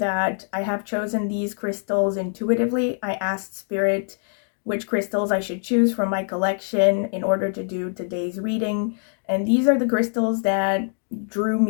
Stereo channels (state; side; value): silent; right; 63 dB below the other